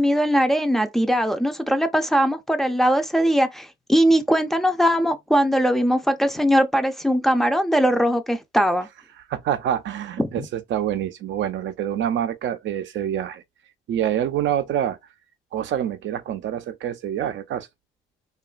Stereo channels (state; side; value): normal; both; correlation 0.77